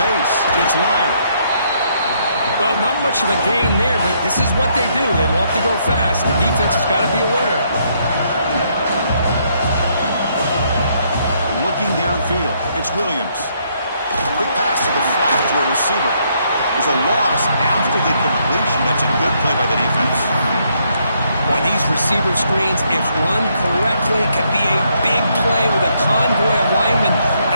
It's Lyle. Well, not much of a gain there, but this is what they do. They love to go fast. The defense has got to be aware. Looking downfield, it's Williams. Quick receiver. There's a loss after the completion. That's a good play by the defense. Boy, these receiver screens, if run correctly, can be a big play with a convoy of linemen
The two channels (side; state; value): both; inverted; correlation -0.72